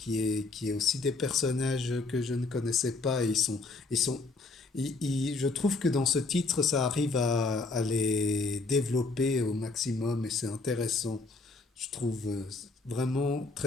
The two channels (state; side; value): quieter; right; 3.6 dB